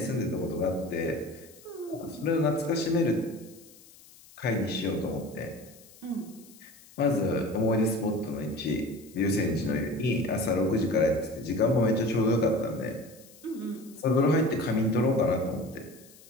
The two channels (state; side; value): noise; left; hiss, 23 dB below the sound